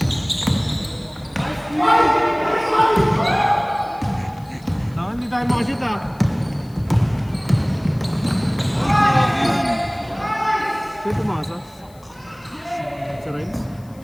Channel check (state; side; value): noise; left; hiss, 29 dB below the sound